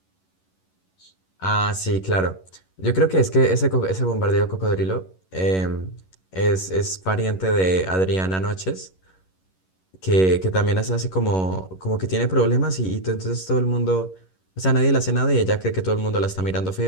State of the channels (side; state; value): right; late; 11 ms